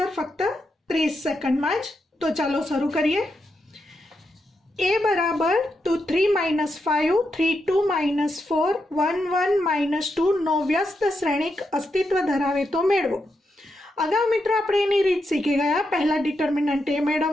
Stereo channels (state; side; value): normal; both; correlation 0.84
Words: ફક્ત 30 સેકન્ડમાં જ। તો ચાલો શરૂ કરીએ। a બરાબર 2 3 - 5 3 2 - 4 1 1 - 2 નો વ્યસ્ત શ્રેણિક અસ્તિત્વ ધરાવે તો મેળવો। अगाऊ मित्रों આપણે એની રીત શીખી ગયા। પહેલા ડિટર્મિનન્ટ a